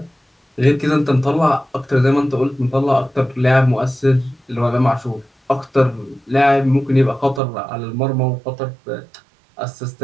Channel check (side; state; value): left; drops out; at 7.4 s